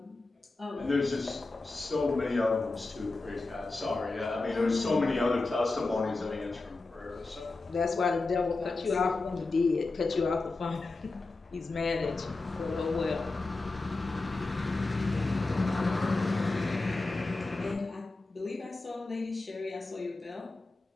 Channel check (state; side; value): quieter; right; 3.4 dB